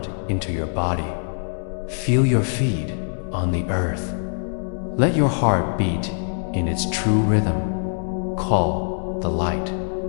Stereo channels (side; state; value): right; silent; digital silence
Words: into your body. Feel your feet on the earth. Let your heart beat in its true rhythm. Call the light.